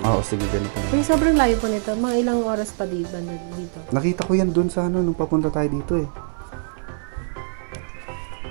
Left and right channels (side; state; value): left; silent; 57 dB below the other